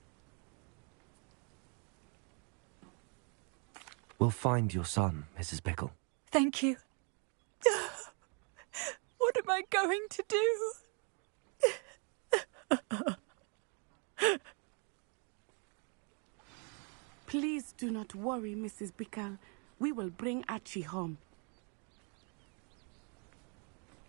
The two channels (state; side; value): quieter; left; 37.0 dB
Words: We'll find your son, Mrs. Pickle. Thank you. What am I going to do? Please do not worry, Mrs. Pickle. We will bring Archie home.